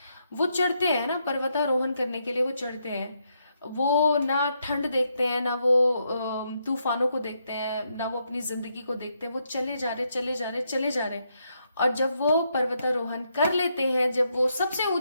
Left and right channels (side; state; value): both; inverted; correlation -0.79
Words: वो चढ़ते हैं ना, पर्वतारोहण करने के लिए वो चढ़ते हैं। वो ना ठंड देखते हैं, ना वो तूफानों को देखते हैं, ना वो अपनी जिंदगी को देखते हैं, वो चले जा रहे चले जा रहे चले जा रहे। और जब वो पर्वतारोहण कर लेते हैं, जब वो सबसे